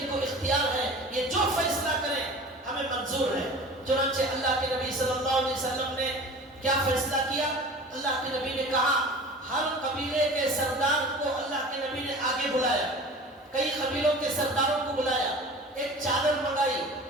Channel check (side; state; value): both; normal; correlation 0.39